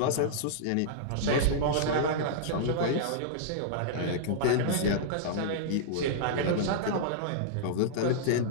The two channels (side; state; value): both; different; correlation -0.02